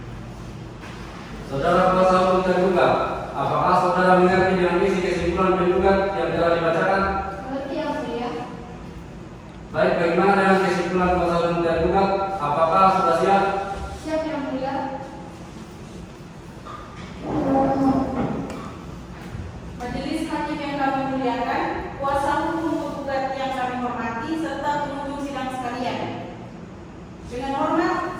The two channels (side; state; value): both; identical; correlation 1.00